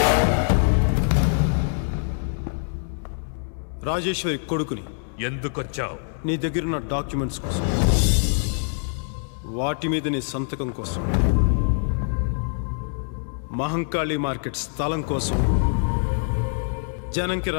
రాజేశ్వరి కొడుకుని. ఎందుకొచ్చావు? నీ దగ్గరున్న డాక్యుమెంట్స్ కోసం, వాటి మీద నీ సంతకం కోసం, మహంకాళి మార్కెట్ స్థలం కోసం, జనంకి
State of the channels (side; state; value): right; silent; 62 dB below the other